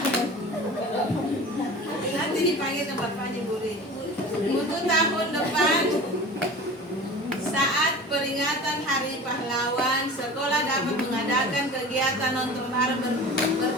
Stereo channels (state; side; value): normal; both; correlation 0.37